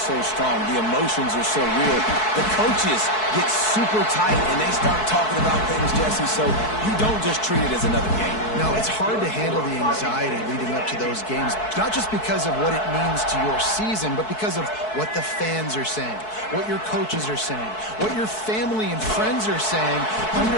strong, the emotions are so real. The coaches get super tight and they start talking about things, Jesse, so you don't just treat it as another game. No, it's hard to handle the anxiety leading up to those games, not just because of what it means to your season, but because of what the fans are saying, what your coaches are saying, what your family and friends are saying.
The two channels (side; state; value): right; late; 4.6 ms